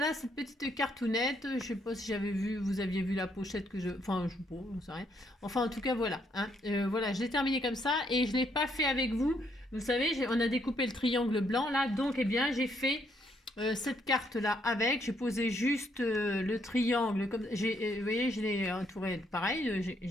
cette petite cartoonette. Je sais pas si j'avais vu, vous aviez vu la pochette que je, enfin je sais pas, j'en sais rien. Enfin en tout cas voilà, hein. Voilà, je l'ai terminé comme ça et je l'ai pas fait avec vous. Vous savez, on a découpé le triangle blanc là, donc eh bien j'ai fait cette carte là avec, j'ai posé juste le triangle comme vous voyez, je l'ai entouré pareil,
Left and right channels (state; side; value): normal; both; correlation 0.72